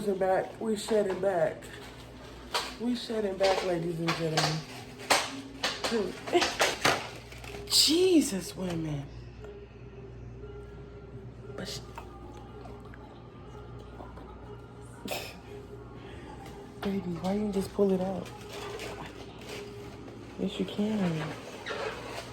back. We shedding back. We shedding back, ladies and gentlemen. Jesus, women. But baby, why you just pull it out? Yes, you can.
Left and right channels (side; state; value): both; identical; correlation 1.00